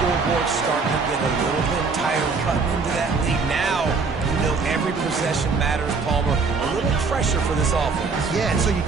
starting to get a little bit tired cutting into that lead. Now, you know every possession matters, Palmer. A little pressure for this offense. Yeah, and so you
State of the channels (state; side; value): quieter; left; 4.6 dB